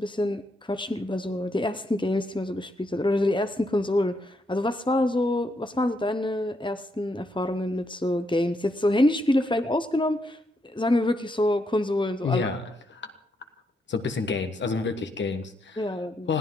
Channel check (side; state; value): both; normal; correlation 0.78